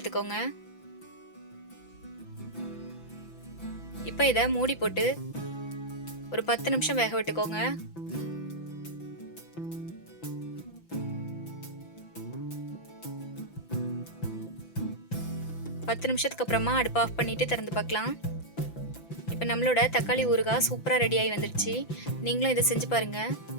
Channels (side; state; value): right; late; 5.9 ms